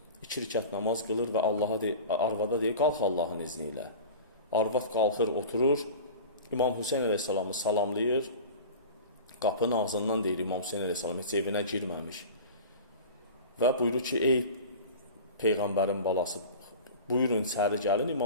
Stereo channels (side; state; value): both; inverted; correlation -0.35